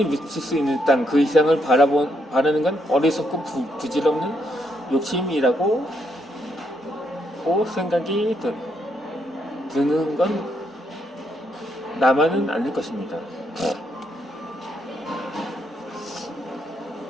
묻힐 수 있는 땅 그 이상을 바라는 건 어리석고 부질없는 욕심이라고 생각이 드는 건 나만은 아닐 것입니다.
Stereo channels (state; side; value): normal; both; correlation 0.76